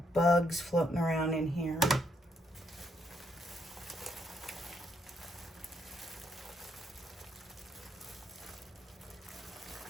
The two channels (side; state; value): both; normal; correlation 0.74